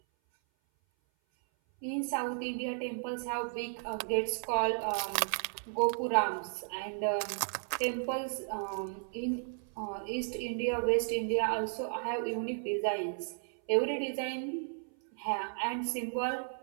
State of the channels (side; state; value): left; silent; 55 dB below the other